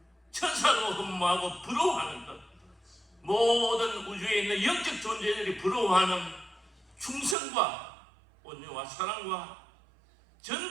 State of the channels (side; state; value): left; drops out; at 7.4 s